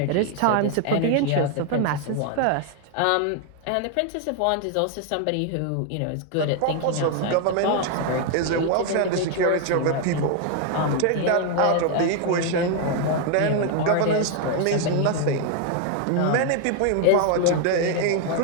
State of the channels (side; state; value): both; different; correlation 0.01